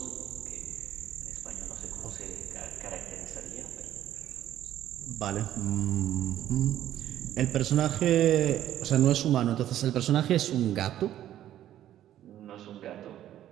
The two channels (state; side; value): quieter; left; 12.2 dB